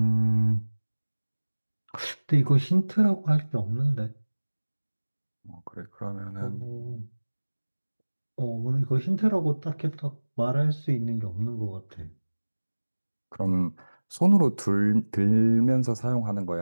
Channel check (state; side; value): inverted; both; correlation -1.00